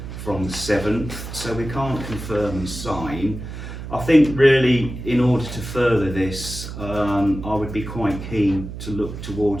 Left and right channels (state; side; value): noise; right; hum, 9 dB below the sound